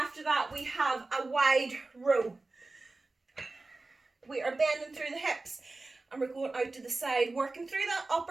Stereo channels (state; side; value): quieter; left; 3.3 dB